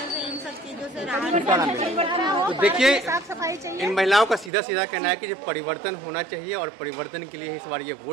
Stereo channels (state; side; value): drops out; left; at 4.5 s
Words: इन सब चीजों से राहत। तो देखिए, साफ सफाई चाहिए। इन महिलाओं का सीधा सीधा कहना है कि जो परिवर्तन होना चाहिए और परिवर्तन के लिए इस बार ये